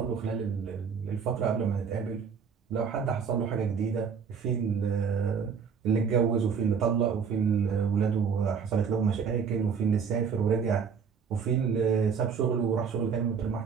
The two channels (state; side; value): quieter; left; 6.3 dB